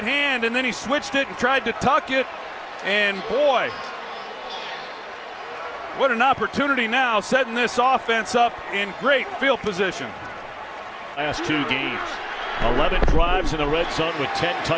hand, and then he switched it and tried to tuck it. And boy, what an opportunity now, setting this offense up in great field position. Last 2 games, 11 drives in the red zone with 10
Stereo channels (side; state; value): both; identical; correlation 1.00